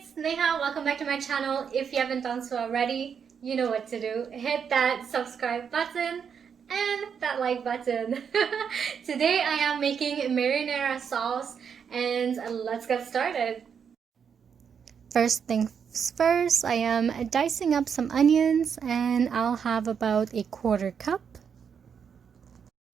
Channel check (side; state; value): left; quieter; 7.1 dB